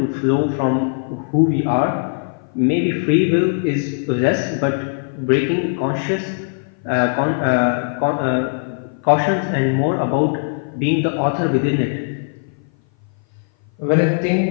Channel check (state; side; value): silent; right; 57 dB below the other